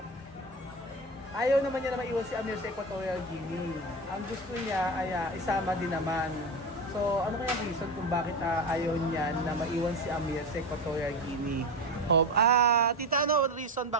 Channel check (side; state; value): both; normal; correlation 0.21